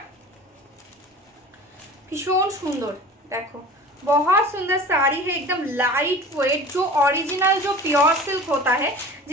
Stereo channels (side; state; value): both; normal; correlation 0.39